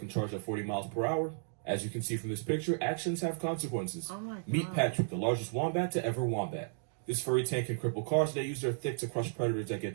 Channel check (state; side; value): silent; left; digital silence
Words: charge at 40 miles per hour, as you can see from this picture, actions have consequences. Oh my God. Meet Patrick, the largest wombat to ever wombat. This furry tank can cripple cars. They use their thick to crush predators that get